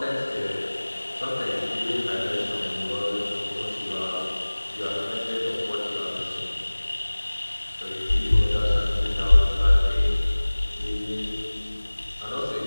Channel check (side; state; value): both; inverted; correlation -1.00